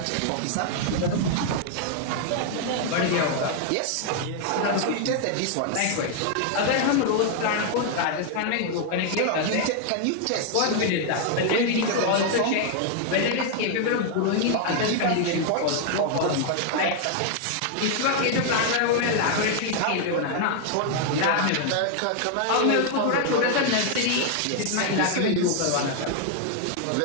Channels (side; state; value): both; different; correlation 0.00